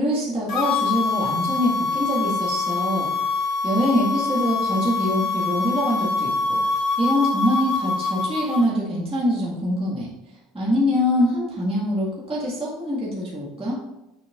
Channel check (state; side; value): normal; both; correlation 0.64